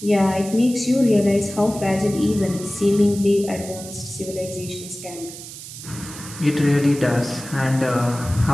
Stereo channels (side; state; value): right; noise; hiss, 13 dB below the sound